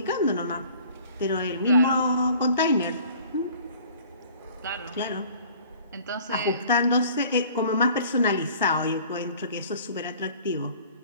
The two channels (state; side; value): inverted; both; correlation -0.50